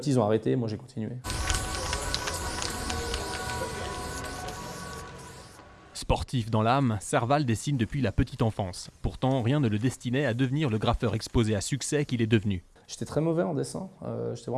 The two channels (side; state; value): both; identical; correlation 1.00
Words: ils ont arrêté. Moi, j'ai continué. Sportif dans l'âme, Serval dessine depuis la petite enfance. Pourtant, rien ne le destinait à devenir le graffeur exposé à succès qu'il est devenu. J'étais très mauvais en dessin, j'étais